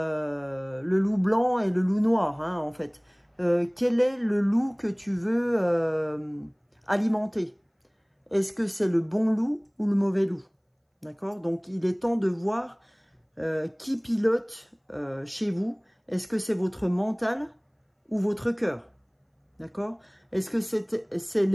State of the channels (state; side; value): identical; both; correlation 1.00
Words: loup blanc et le loup noir, hein, en fait. Quel est le loup que tu veux alimenter? Est-ce que c'est le bon loup ou le mauvais loup? D'accord? Donc, il est temps de voir qui pilote chez vous. Est-ce que c'est votre mental ou votre cœur? D'accord? Est-ce que c'est